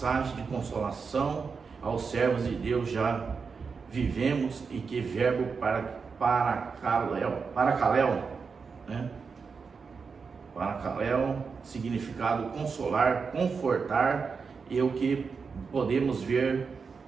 de consolação aos servos de Deus. Já vivemos e que verbo paracaléu, né? Paracaléu, significado consolar, confortar, e o que podemos ver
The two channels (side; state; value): left; quieter; 5.3 dB